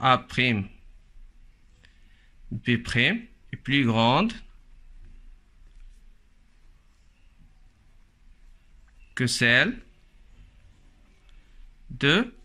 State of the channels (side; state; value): both; identical; correlation 1.00